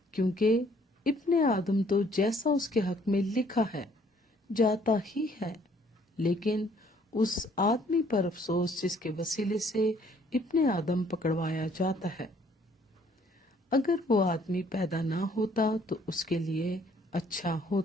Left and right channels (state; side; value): normal; both; correlation 0.62